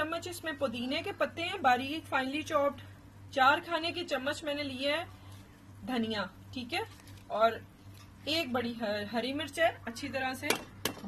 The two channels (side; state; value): both; identical; correlation 1.00